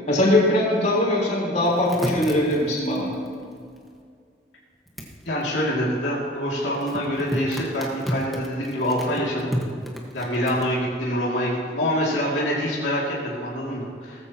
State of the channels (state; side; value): normal; both; correlation 0.39